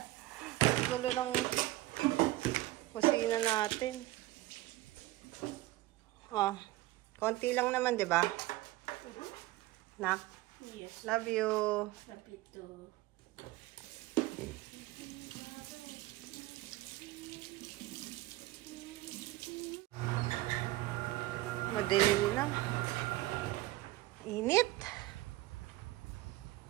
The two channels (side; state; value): left; quieter; 17.7 dB